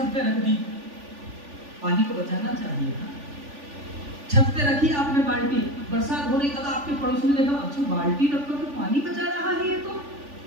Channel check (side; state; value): left; late; 3.5 ms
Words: पे रख दी। पानी को बचाना चाहिए था, छत पे रखी आपने बाल्टी, बरसात हो रही, कल आपके पड़ोसी ने देखा, अच्छा बाल्टी रखकर तो पानी बचा रहा है ये तो।